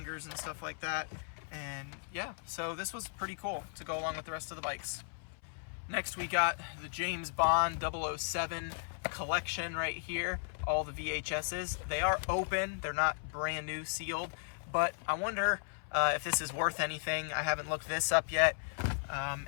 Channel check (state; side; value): silent; right; 54 dB below the other